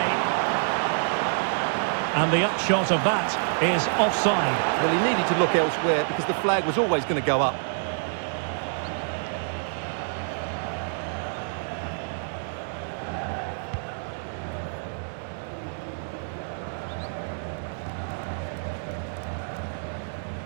And the upshot of that is offside. Well, he needed to look elsewhere because the flag was always going to go up.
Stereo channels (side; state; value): left; silent; digital silence